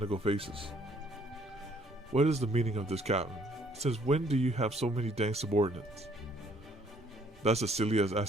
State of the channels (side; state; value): both; normal; correlation 0.63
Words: faces. What is the meaning of this, Captain? Since when do you have so many dang subordinates? That's as silly as